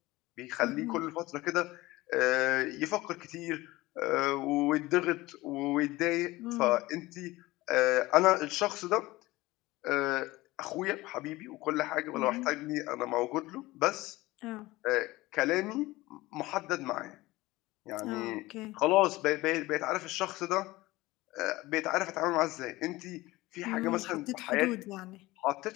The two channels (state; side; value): quieter; right; 19.4 dB